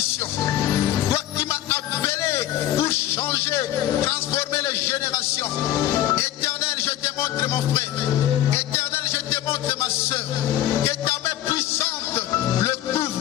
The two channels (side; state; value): right; quieter; 13.2 dB